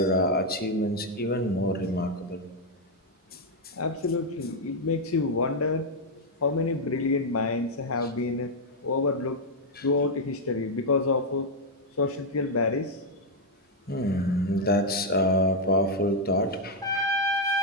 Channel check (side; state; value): both; normal; correlation -0.01